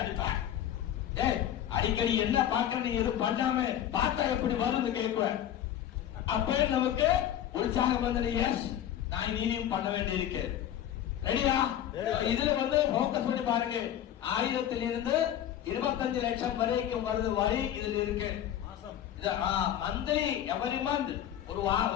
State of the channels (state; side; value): quieter; right; 10.9 dB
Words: அடிப்பேன். அடிக்கடி என்ன பாக்குறேன், நீ எதுவும் பண்ணாம பார்த்தா எப்படி வரும்னு கேட்குவேன். அப்ப நமக்கு உற்சாகம் வந்து எஸ் நான் இனியும் பண்ண வேண்டி இருக்கு. ரெடியா? இதுல வந்து போக்கஸ் பண்ணி பாருங்க. 1000 இருந்து 25 லட்சம் வரைக்கும் வருது வரி இதுல இருக்கு. மந்த்லி எவரி மந்த் ஒரு